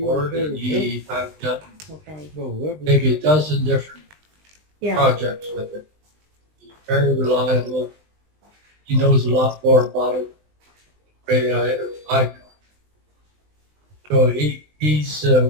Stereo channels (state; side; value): late; left; 20 ms